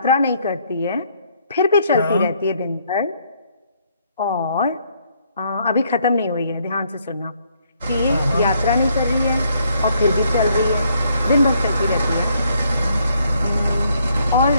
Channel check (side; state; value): both; inverted; correlation -0.70